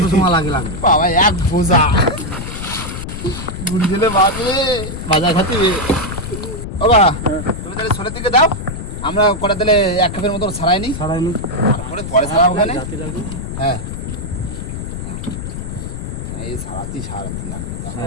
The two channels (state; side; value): noise; left; rumble, 7 dB below the sound